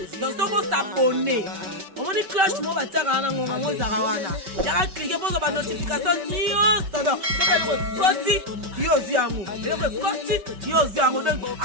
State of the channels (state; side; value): late; left; 5.2 ms